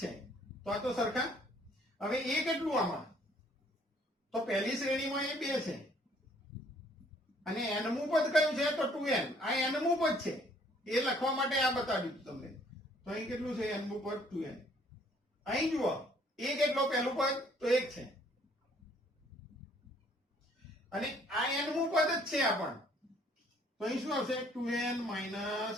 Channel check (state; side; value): normal; both; correlation 0.62